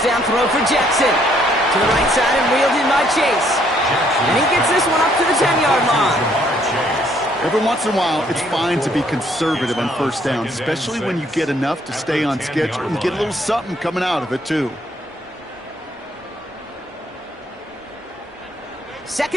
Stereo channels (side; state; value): both; normal; correlation 0.67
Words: down throw for Jackson. To the right side and wheeled in by Chase. And he gets this one up to the 10-yard line. Every once in a while, it's fine to be conservative on 1st down, especially when you get enough to stay on schedule and get a little something coming out of it, too.